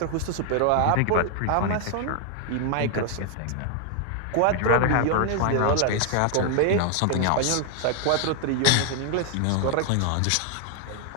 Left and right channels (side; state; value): both; different; correlation 0.00